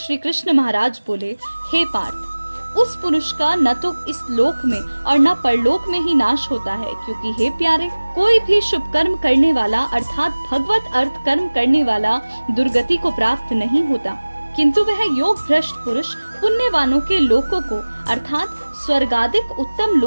कृष्ण महाराज बोले, हे पार्थ, उस पुरुष का न तो इस लोक में और न परलोक में ही नाश होता है, क्योंकि हे प्यारे, कोई भी शुभ कर्म करने वाला अर्थात भगवत अर्थ कर्म करने वाला दुर्गति को प्राप्त नहीं होता, किंतु वह योग भ्रष्ट पुरुष पुण्यवानों के लोकों को अर्थात स्वर्गादिक उत्तम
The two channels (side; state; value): both; inverted; correlation -1.00